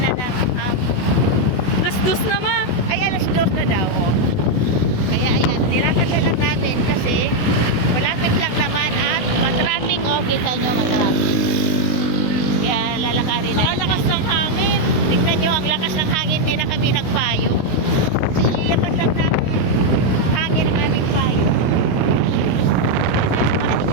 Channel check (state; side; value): late; right; 16 ms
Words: ng Alas 2 naman. ay alas 2 na daw. Oh. Kaya ayan, nilakad na lang natin kasi malapit lang naman at matraffic. Oh, kita nyo matraffic. Kaya lalakarin na. Lakas ng hangin. Tignan nyo, ang lakas ng hangin, di na kami nagpayo. Kasi ilipad lang ng hangin ang aming payo. Sasamahan